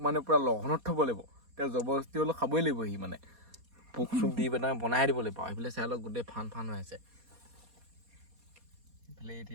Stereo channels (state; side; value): late; left; 4.2 ms